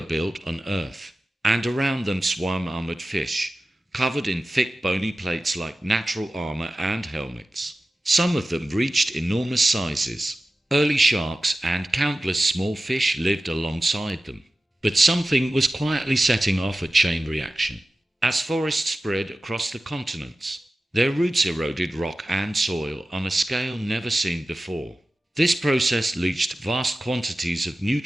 built on Earth, and around them swam armored fish, covered in thick bony plates like natural armor and helmets. Some of them reached enormous sizes. Early sharks and countless small fish lived alongside them. But something was quietly setting off a chain reaction. As forests spread across the continents, their roots eroded rock and soil on a scale never seen before. This process leached vast quantities of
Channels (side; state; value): both; normal; correlation 0.95